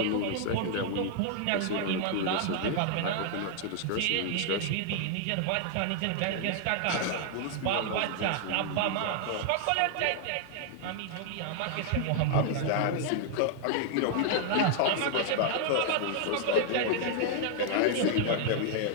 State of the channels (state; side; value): different; both; correlation 0.00